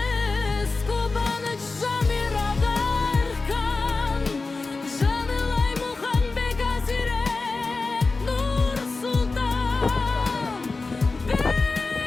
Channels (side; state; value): right; quieter; 3.8 dB